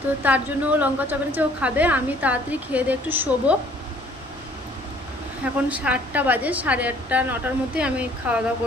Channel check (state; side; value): normal; both; correlation 0.57